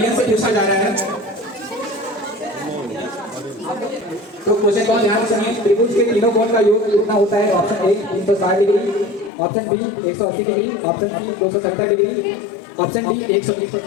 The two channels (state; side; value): drops out; right; at 9.3 s